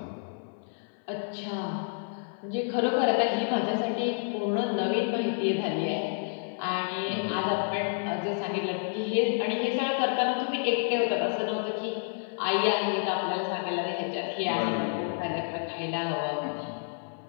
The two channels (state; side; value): silent; right; 55 dB below the other